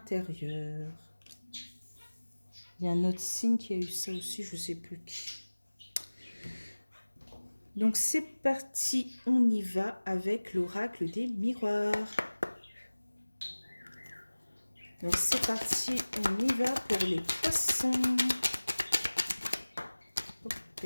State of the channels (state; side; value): inverted; both; correlation -1.00